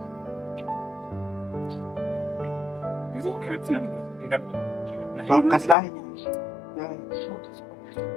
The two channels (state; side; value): drops out; right; at 5.8 s